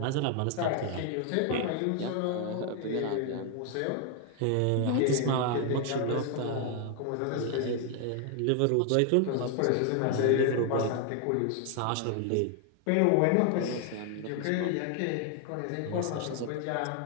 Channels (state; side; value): different; both; correlation 0.00